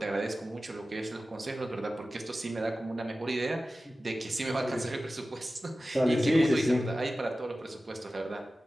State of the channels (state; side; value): normal; both; correlation 0.95